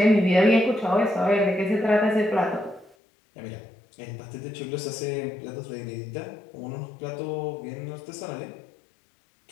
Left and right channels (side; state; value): right; drops out; at 3.0 s